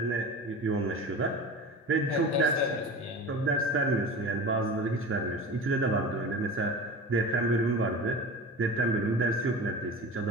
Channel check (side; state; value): both; normal; correlation 0.33